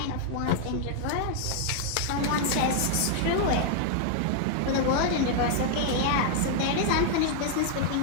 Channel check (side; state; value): both; different; correlation -0.01